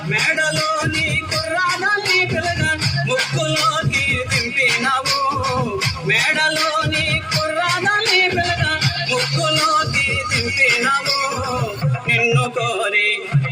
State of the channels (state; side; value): identical; both; correlation 1.00